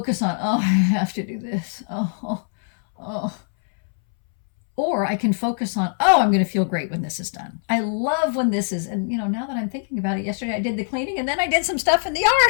on, I have to do this. Or I can focus on, I'm going to feel great when this is done. I love when this is, and now that I'm thinking about it, yesterday I did the cleaning and then I did some stuff in the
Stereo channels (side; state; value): right; silent; 64 dB below the other